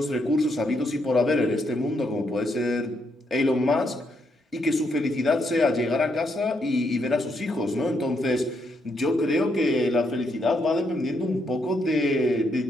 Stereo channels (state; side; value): normal; both; correlation 0.77